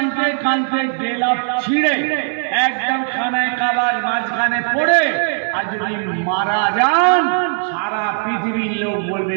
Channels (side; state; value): left; silent; digital silence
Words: কাঁদতে গেলাপ ছিঁড়ে একদম খানায় কাবার মাঝখানে পড়ে আর যদি মারা যান, সারা পৃথিবীর লোক বলবে